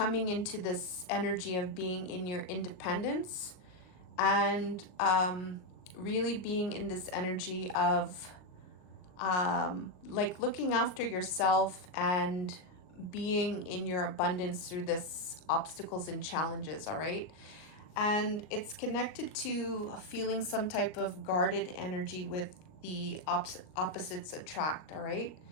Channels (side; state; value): right; late; 39 ms